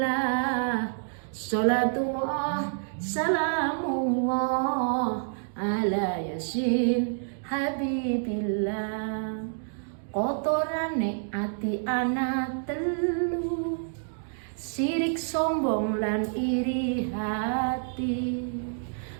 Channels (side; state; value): left; silent; digital silence